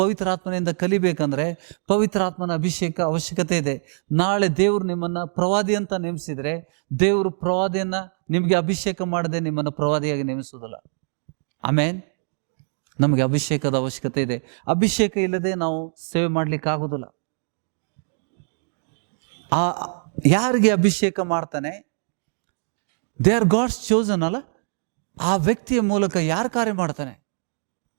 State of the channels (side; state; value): left; silent; digital silence